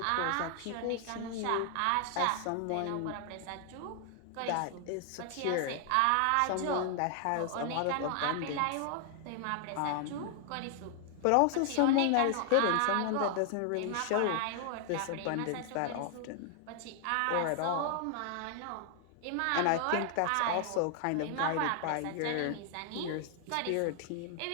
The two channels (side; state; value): both; different; correlation 0.00